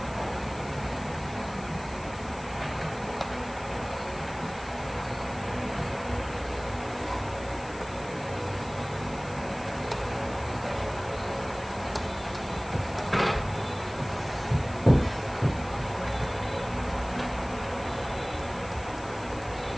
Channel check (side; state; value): left; noise; hiss, 20 dB below the sound